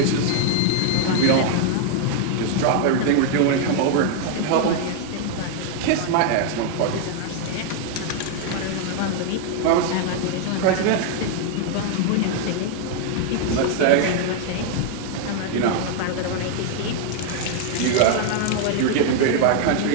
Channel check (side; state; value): both; different; correlation 0.00